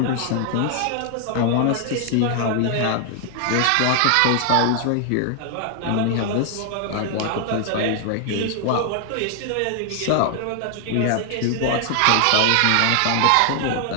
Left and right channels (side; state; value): both; different; correlation 0.00